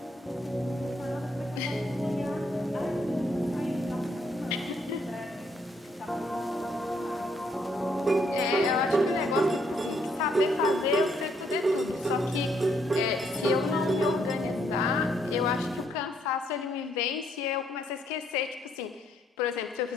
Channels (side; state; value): both; normal; correlation 0.71